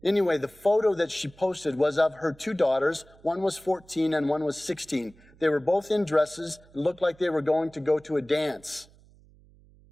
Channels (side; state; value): right; noise; hum, 27 dB below the sound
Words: Anyway, the photo that she posted was of her 2 daughters. One was 14 and one was 16. They were both in dresses. It looked like they were going to go to a dance.